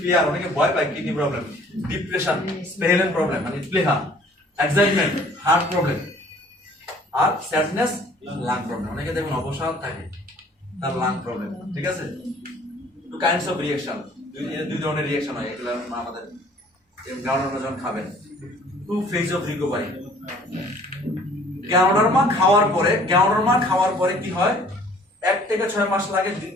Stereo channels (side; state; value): both; normal; correlation 0.54